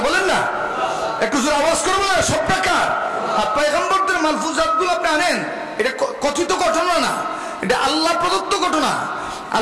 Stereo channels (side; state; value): both; identical; correlation 1.00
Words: বলেন না, একটু জোরে আওয়াজ করবো না, সবটা কার? আর পয়গম্বরদের মালফুজাতগুলো আপনি আনেন, এটা কথিত ঘটনা না, এটা আল্লাহ প্রদত্ত ঘটনা।